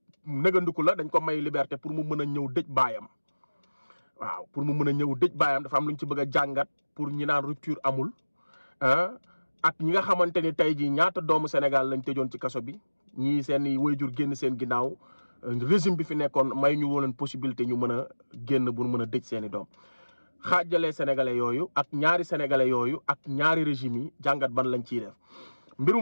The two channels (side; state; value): both; inverted; correlation -1.00